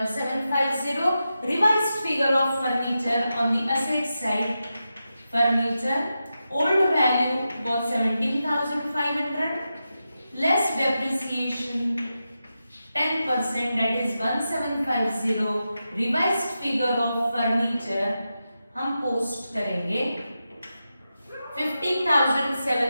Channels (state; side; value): inverted; both; correlation -0.90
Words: revised figure of furniture on the asset side, furniture old value was 17,500 less depreciation 10%, that is 1750। revised figure of furniture हम post करेंगे